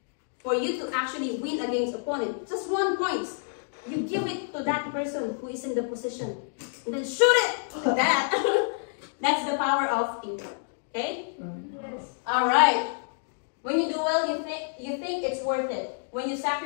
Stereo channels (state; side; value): silent; right; digital silence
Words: for you to actually win against opponent, just 1 point, you give it to that person who is in the position, and then shoot it like that. That's the power of teamwork. Okay? Yes. All right. When you do well, you think it's worth it. When you